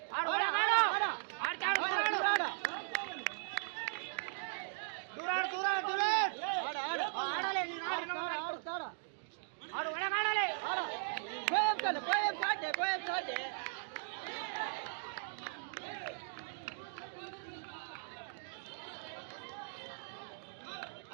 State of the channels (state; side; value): silent; left; digital silence